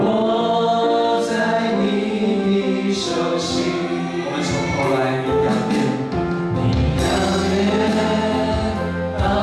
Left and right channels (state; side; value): identical; both; correlation 1.00